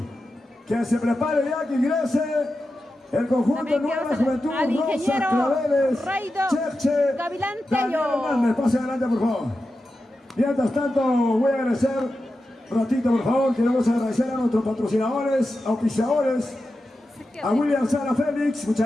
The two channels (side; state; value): both; normal; correlation 0.91